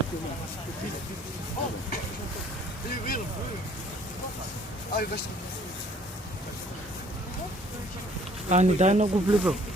Ни дай много влива.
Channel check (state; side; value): normal; both; correlation 0.58